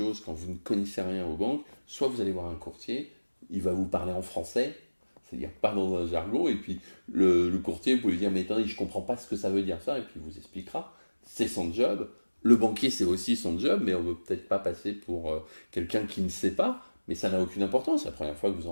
quand vous ne connaissez rien aux banques, soit vous allez voir un courtier, il va vous parler en français, c'est-à-dire pas dans un jargon, et puis le courtier, vous pouvez lui dire, mais attendez, je comprends pas ce que ça veut dire ça, et puis il vous expliquera. C'est son job. Le banquier, c'est aussi son job, mais on ne veut peut-être pas passer pour quelqu'un qui ne sait pas, mais ça n'a aucune importance. La première fois que vous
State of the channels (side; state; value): both; inverted; correlation -1.00